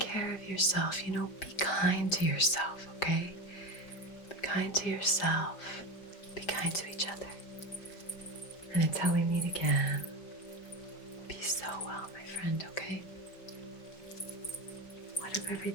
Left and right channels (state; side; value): late; right; 5.1 ms